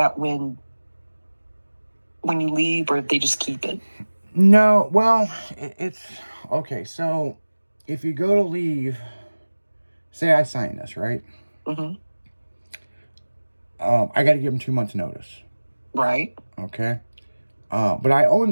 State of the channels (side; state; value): both; inverted; correlation -1.00